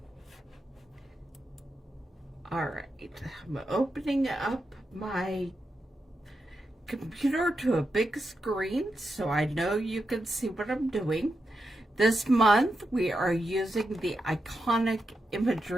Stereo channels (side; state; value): both; normal; correlation 0.87